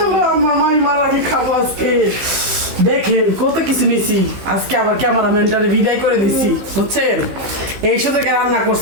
মামাই মারা কি খাবো আজকে দেখেন কত কিছু নিছি আজকে আবার ক্যামেরাম্যানটারে বিদায় করে দিছি বুঝছেন এই সাথে রান্না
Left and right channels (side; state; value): left; late; 15 ms